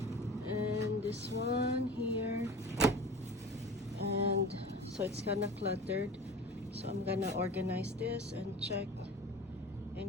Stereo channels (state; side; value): normal; both; correlation 0.36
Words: and this one here, and so it's kind of cluttered. So I'm gonna organize this and check